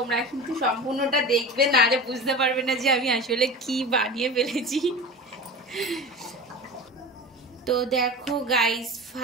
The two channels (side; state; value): both; normal; correlation 0.32